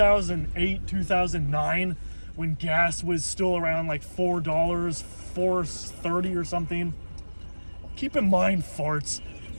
2009, when gas was still around like $4, $4.30 or something. Keep in mind, farts,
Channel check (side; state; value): both; inverted; correlation -1.00